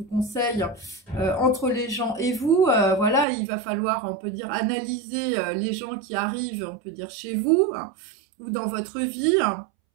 conseille entre les gens et vous. Voilà, il va falloir, on peut dire, analyser les gens qui arrivent, on peut dire, chez vous. Hein, ou dans votre vie,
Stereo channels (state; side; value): drops out; left; at 3.2 s